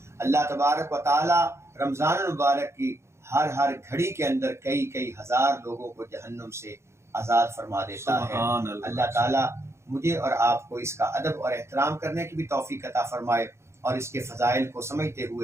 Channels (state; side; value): late; left; 0.13 ms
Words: اللہ تبارک و تعالیٰ رمضان المبارک کی ہر گھڑی کے اندر کئی ہزار لوگوں کو جہنم سے آزاد فرما دیتا ہے. اللہ تعالیٰ مجھے اور آپ کو اس کا ادب اور احترام کرنے کی بھی توفیق عطا فرمائے، اور اس کے فضائل کو سمجھتے